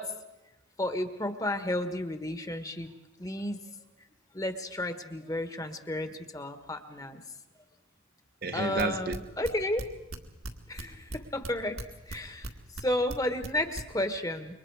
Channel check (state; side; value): normal; both; correlation 0.51